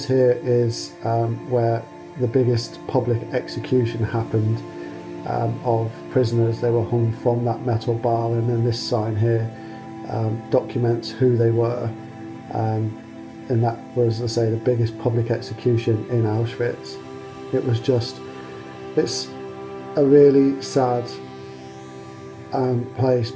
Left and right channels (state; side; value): identical; both; correlation 1.00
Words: here is where the biggest public execution happened of prisoners. They were hung from that metal bar, and then this sign here documents who they were. And that was, as I say, the biggest public execution in Auschwitz. It was just, it's a really sad place,